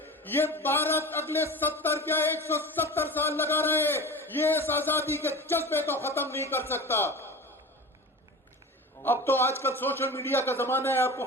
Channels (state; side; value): normal; both; correlation 0.32